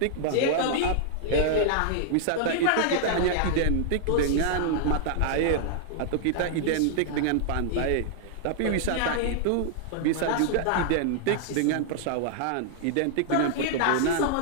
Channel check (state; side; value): different; both; correlation -0.01